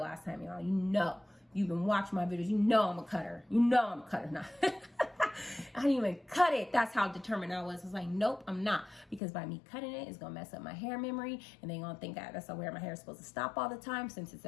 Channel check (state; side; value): drops out; right; at 9.2 s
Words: last time, y'all. you've been watching my videos, you know I'm a cutter. You know I'm a cutter. Nah. I didn't even cut it. That's how determined I was. I was like, nope, I'm not. Because by me cutting it, it's going to mess up my hair memory. And they're going to think that's where my hair is supposed to stop all the time. Since it's